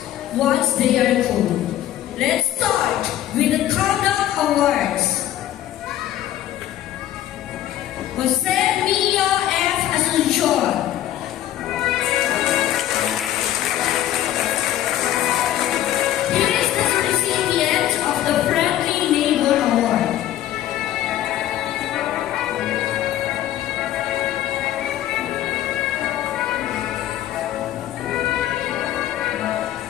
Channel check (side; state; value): right; quieter; 12.7 dB